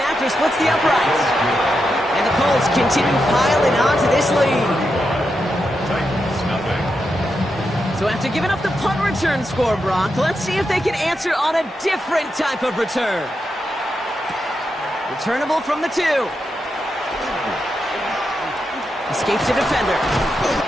after splits the uprights. And the Colts continue piling onto this lead. Titans, nothing. So after giving up the punt return score, Brock, let's see if they can answer on a different type of return. Returnable from the 2. Escapes a defender.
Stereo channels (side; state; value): both; normal; correlation 0.86